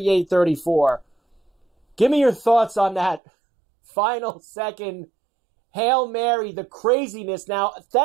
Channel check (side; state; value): left; drops out; at 3.2 s